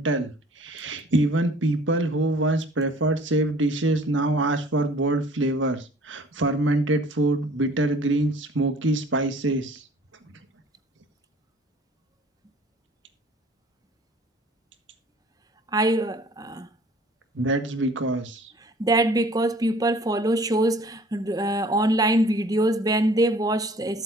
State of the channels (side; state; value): both; normal; correlation 0.51